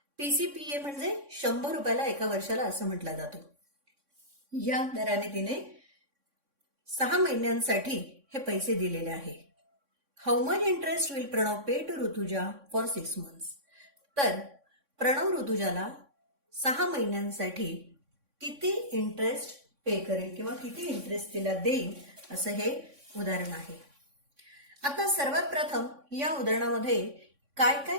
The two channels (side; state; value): left; late; 3.6 ms